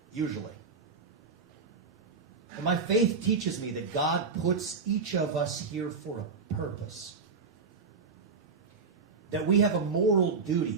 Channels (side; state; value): left; quieter; 4.9 dB